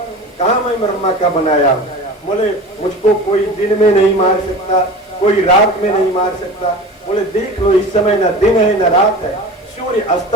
कहाँ मैं ब्रह्मा का बनाया हूँ। बोले मुझको कोई दिन में नहीं मार सकता, कोई रात में नहीं मार सकता। बोले देख लो इस समय न दिन है न रात है, सूर्य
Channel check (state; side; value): normal; both; correlation 0.35